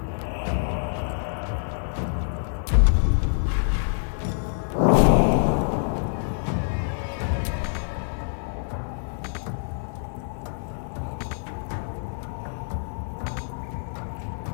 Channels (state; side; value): silent; right; 56 dB below the other